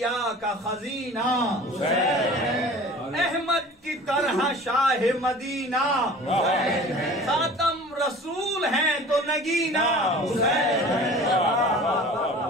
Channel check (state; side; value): normal; both; correlation 0.43